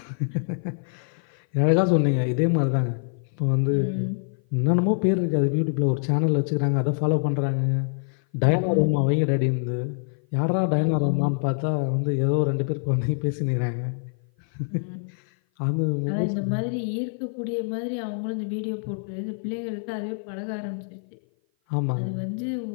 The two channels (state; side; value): silent; right; 56 dB below the other